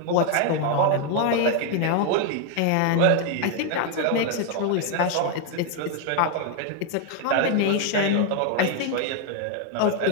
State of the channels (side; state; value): both; different; correlation 0.00